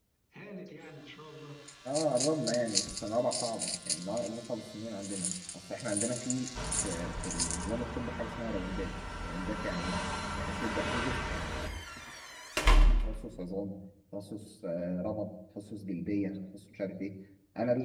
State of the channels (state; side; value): identical; both; correlation 1.00